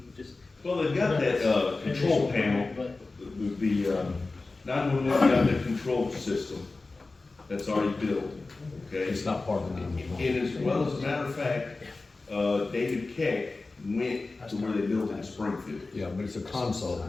just. Well, they've got that, control panel, But the 911 got that control system that's already built, okay? It's not part of the 911. And as well as a matter of fact, David Keck went to where they built in Springfield. Yeah, but it's a console,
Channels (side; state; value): right; quieter; 3.5 dB